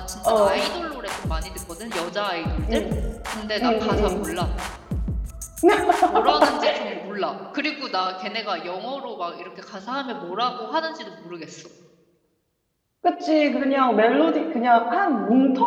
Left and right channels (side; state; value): both; identical; correlation 1.00